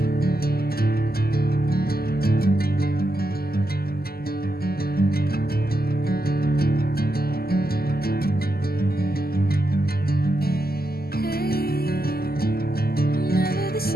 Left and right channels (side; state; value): right; late; 0.45 ms